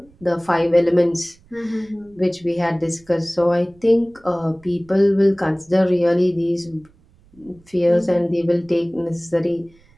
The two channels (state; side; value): noise; right; rumble, 30 dB below the sound